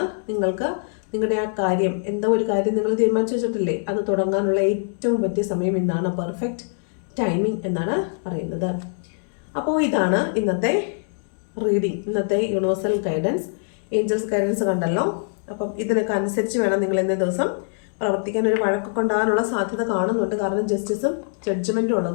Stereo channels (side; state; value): right; silent; digital silence